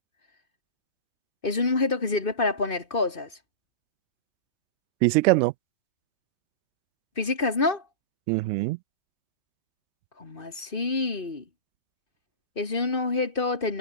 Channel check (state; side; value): late; right; 2.6 ms